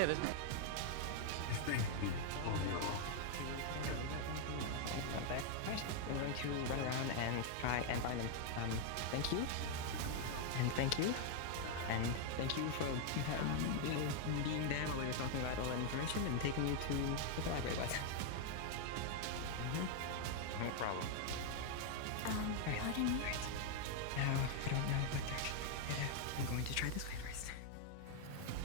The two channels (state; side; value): different; both; correlation 0.00